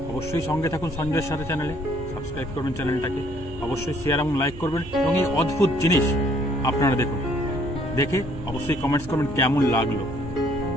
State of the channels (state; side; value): noise; right; hum, 15 dB below the sound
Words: অবশ্যই সঙ্গে থাকুন সঞ্জয়ের সাথে চ্যানেলে, সাবস্ক্রাইব করবেন চ্যানেলটাকে, অবশ্যই শেয়ার এবং লাইক করবেন এবং এই অদ্ভুত জিনিস আপনারা দেখুন, দেখে অবশ্যই কমেন্টস করবেন কেমন লাগলো।